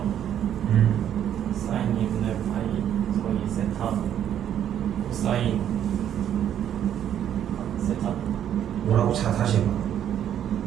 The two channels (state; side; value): quieter; left; 10.1 dB